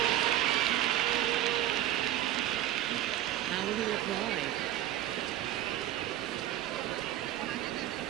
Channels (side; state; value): left; quieter; 12.9 dB